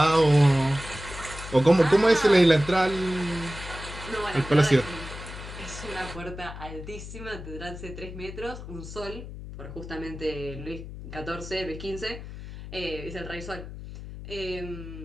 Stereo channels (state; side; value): noise; left; hum, 11 dB below the sound